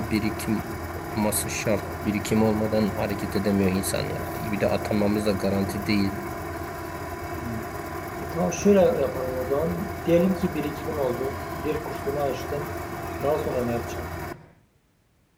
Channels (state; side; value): identical; both; correlation 1.00